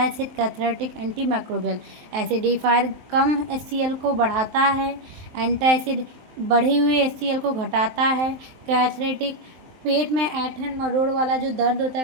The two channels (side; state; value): left; late; 23 ms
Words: cathartic, antimicrobial. Acidifier कम HCl को बढ़ाता है, एंटासिड बढ़ी हुई HCl को घटाता है, कैथरेटिक पेट में ऐंठन मरोड़ वाला जो दर्द होता